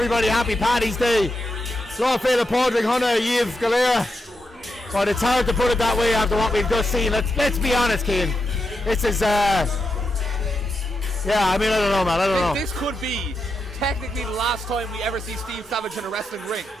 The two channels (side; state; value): both; normal; correlation 0.85